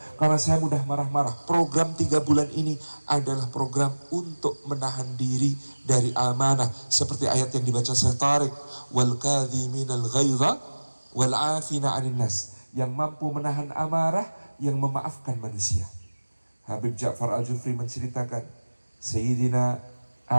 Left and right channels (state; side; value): inverted; both; correlation -1.00